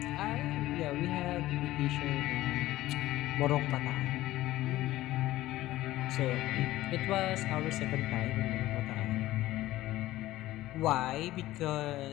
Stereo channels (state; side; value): quieter; right; 16.1 dB